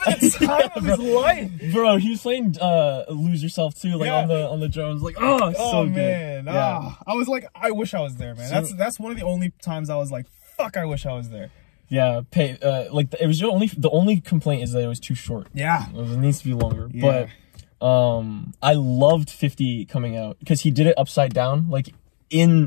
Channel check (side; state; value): right; silent; digital silence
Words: the time of his life. Bro, he was playing Lose Yourself too, like on the drums. Like, so man. good. Yeah. I was like, I wish I was there, man. That's one of the only times I was like, fuck, I wish I was there. Yeah, like it was the only complaint is that it was too short. Yeah. It needs to be longer. Yeah. But I loved 50 coming out because he did it upside down, like